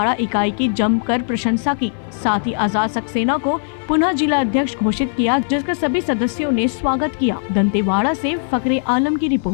इकाई की जमकर प्रशंसा की, साथ ही आजाद सक्सेना को पुनः जिला अध्यक्ष घोषित किया, जिसका सभी सदस्यों ने स्वागत किया। दंतेवाड़ा से फकरे आलम की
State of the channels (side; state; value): right; silent; 58 dB below the other